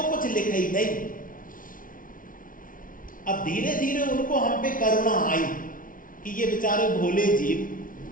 कुछ लिखे ही नहीं। अब धीरे धीरे उनको हम पे करुणा आई कि ये बेचारे भोले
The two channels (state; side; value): late; right; 0.39 ms